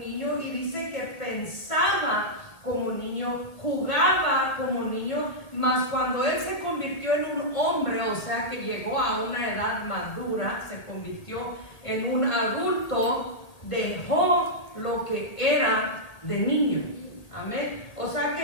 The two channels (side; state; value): right; late; 1.8 ms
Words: y dice que pensaba como niño, jugaba como niño, mas cuando él se convirtió en un hombre, o sea que llegó a una edad madura, se convirtió en un adulto, dejó lo que era de niño. Amén. O sea